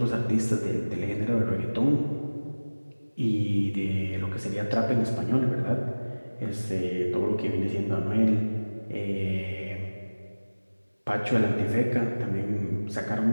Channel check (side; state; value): both; inverted; correlation -1.00